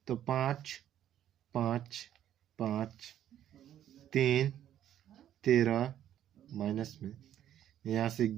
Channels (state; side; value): quieter; left; 11.1 dB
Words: तो 5 5 5 3 13 माइनस में यहाँ से